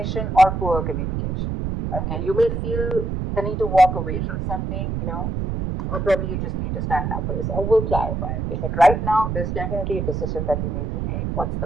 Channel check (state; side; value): noise; right; rumble, 2 dB below the sound